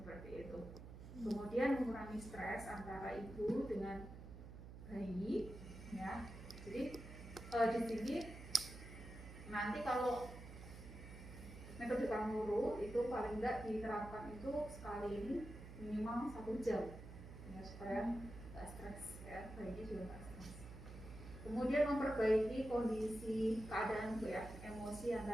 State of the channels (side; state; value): right; noise; hum, 12 dB below the sound